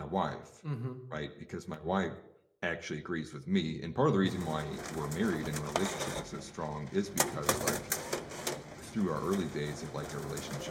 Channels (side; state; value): both; identical; correlation 1.00